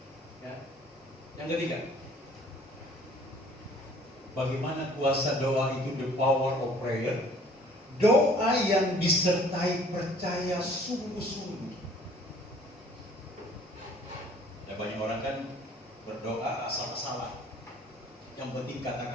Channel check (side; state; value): both; normal; correlation 0.55